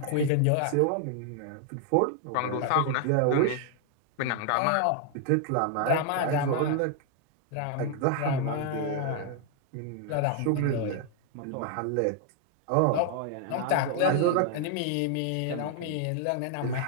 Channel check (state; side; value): different; both; correlation 0.00